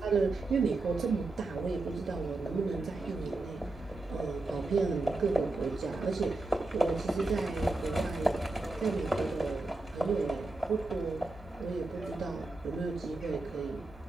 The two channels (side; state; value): left; quieter; 3.1 dB